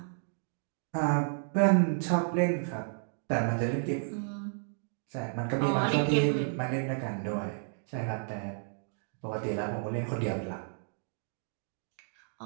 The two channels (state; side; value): silent; left; digital silence